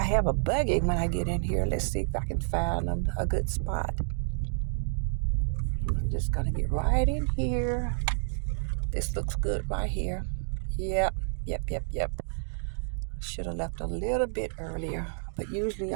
a buggy when I get in here. Let's see if I can find a good spot. I'm just going to get right in here. This looks good right here. Yep. Should have left a little bit earlier. But usually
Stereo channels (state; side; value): silent; left; digital silence